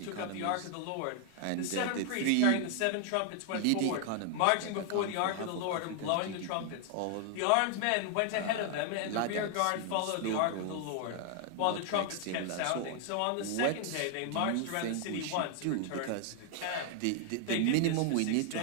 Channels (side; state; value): both; different; correlation 0.00